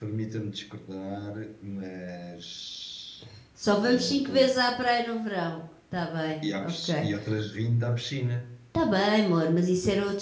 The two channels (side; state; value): both; identical; correlation 1.00